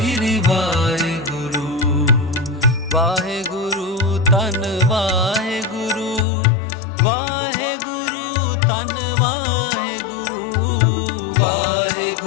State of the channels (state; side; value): drops out; right; at 6.2 s